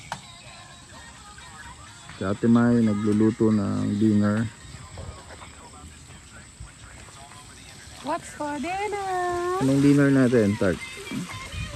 Si Ate May nagluluto ng dinner. What's for dinner? Anong dinner natin, Tart?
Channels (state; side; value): identical; both; correlation 1.00